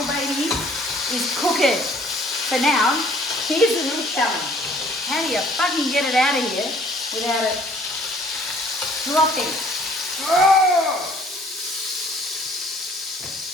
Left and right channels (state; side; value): normal; both; correlation 0.58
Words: baby is cooking. So now, here's the little challenge. How do you fucking get it out of here without it dropping? Oh!